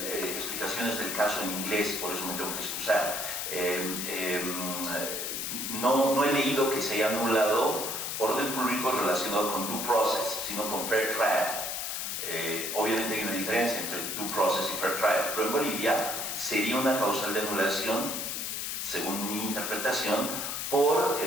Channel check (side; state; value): left; noise; hiss, 3 dB below the sound